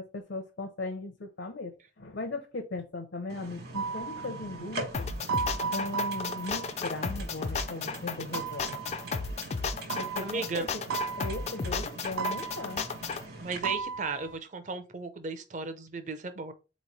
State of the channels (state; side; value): normal; both; correlation 0.08